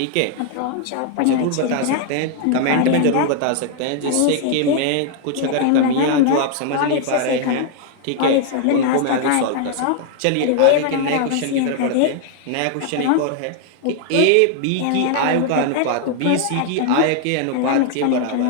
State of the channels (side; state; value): both; different; correlation 0.00